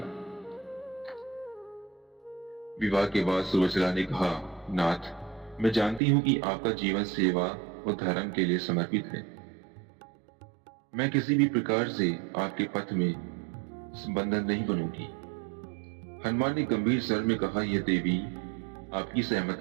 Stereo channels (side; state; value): left; drops out; at 6.0 s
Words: विवाह के बाद सुरवचला ने कहा, नाथ, मैं जानती हूं कि आपका जीवन सेवा और धर्म के लिए समर्पित है। मैं किसी भी प्रकार से आपके पथ में बंधन नहीं बनूंगी। हनुमान ने गंभीर स्वर में कहा, यह देवी, आपकी